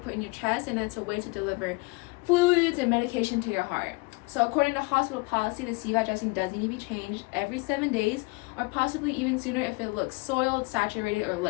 in your chest, and it's a way to deliver fluids and medication to your heart. So according to hospital policy, the Cvad dressing does need to be changed every 7 days, or possibly even sooner if it looks soiled, saturated, or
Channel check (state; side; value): quieter; right; 26.7 dB